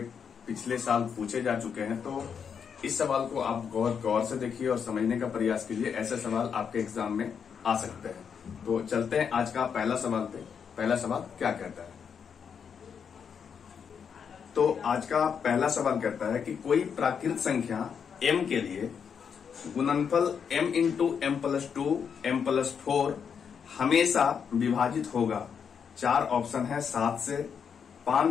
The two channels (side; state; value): right; quieter; 7.0 dB